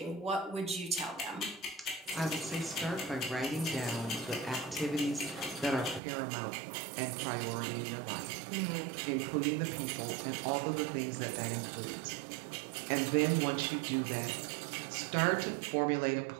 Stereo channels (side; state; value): left; drops out; at 6.0 s